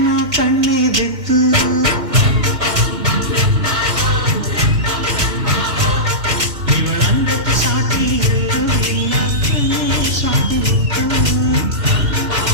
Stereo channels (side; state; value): left; late; 2.2 ms